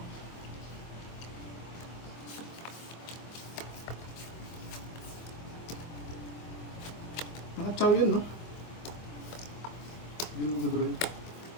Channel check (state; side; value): late; right; 24 ms